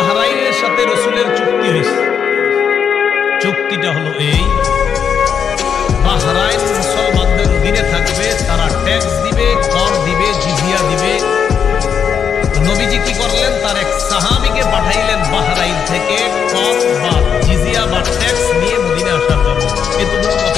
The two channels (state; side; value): quieter; right; 7.4 dB